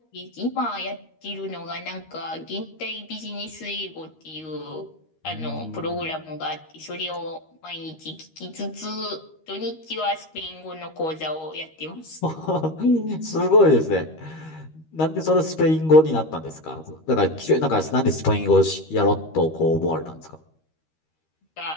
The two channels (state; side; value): late; right; 13 ms